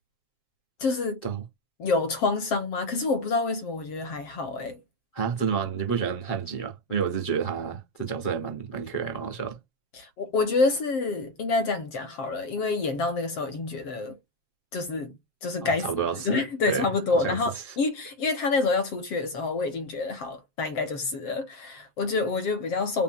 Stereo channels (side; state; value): right; late; 7.5 ms